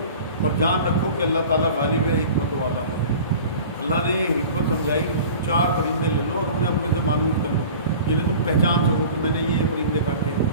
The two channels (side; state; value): both; inverted; correlation -0.40